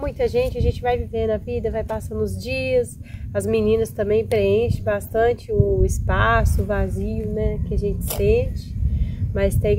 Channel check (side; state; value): both; identical; correlation 1.00